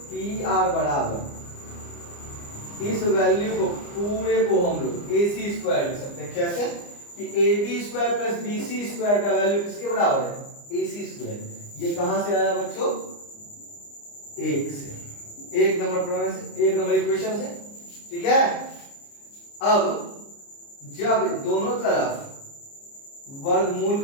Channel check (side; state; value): right; late; 29 ms